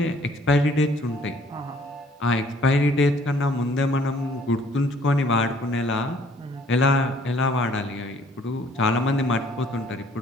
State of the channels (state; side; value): normal; both; correlation 0.59